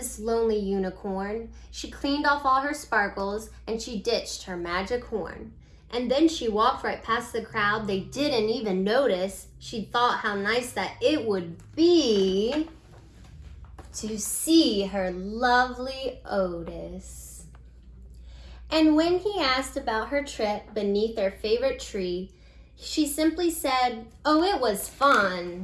lonely unicorn. She cleaned off all her sparkles and she ditched her magic horn. And then she walked right past the crowd. They didn't even notice. She thought how nice that it would be to see her lovely Otis. And when he asked about her trip beneath their favorite tree, she simply said, "Oh, it was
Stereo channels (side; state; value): both; identical; correlation 1.00